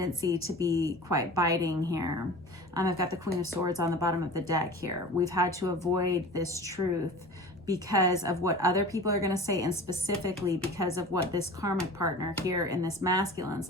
to be quite biting here. I've got the Queen of Swords on the bottom of the deck here. We've had to avoid this truth because of what other people are going to say, and specifically because of what this karmic partner here in this masculine's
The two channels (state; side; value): normal; both; correlation 0.37